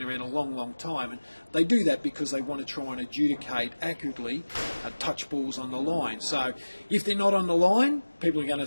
around a long, long time, and they do that because they want to try and adjudicate accurately touch balls on the line. So if they're not on the line, people are going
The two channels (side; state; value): both; inverted; correlation -1.00